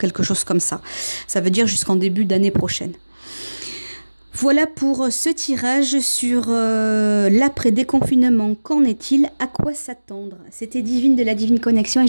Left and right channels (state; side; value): inverted; both; correlation -1.00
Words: chose comme ça. Ça veut dire jusqu'en début d'année prochaine. Voilà pour ce tirage sur l'après-déconfinement. Qu'en est-il? À quoi s'attendre? C'était Divine de la Divine Connexion et